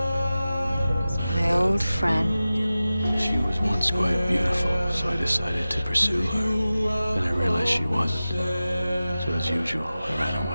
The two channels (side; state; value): both; inverted; correlation -0.95